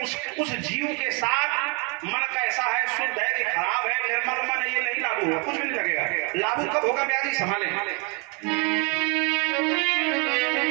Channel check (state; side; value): quieter; left; 33.1 dB